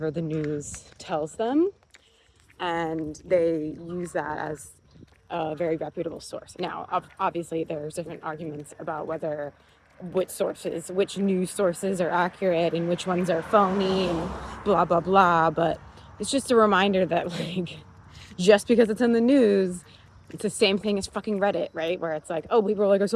the news tells them, and they use that as a very reputable source. Now, obviously, there's different arguments about which news sources are accurate and which ones are phony and blah, blah, blah. But it's just a reminder that, like, just because it's in the news, it's the same thing as fucking Reddit, right? Where it's like, oh, people are like, I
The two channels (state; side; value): identical; both; correlation 1.00